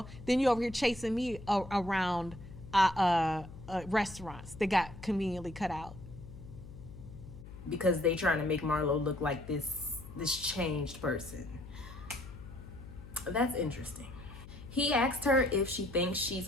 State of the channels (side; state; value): left; noise; hum, 15 dB below the sound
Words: then you over here chasing me around restaurants that got conveniently cut out. Because they trying to make Marlo look like this changed person. That's interesting. He asked her if she thinks